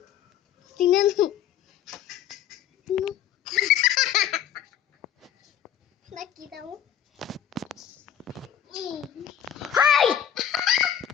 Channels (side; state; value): right; quieter; 9.9 dB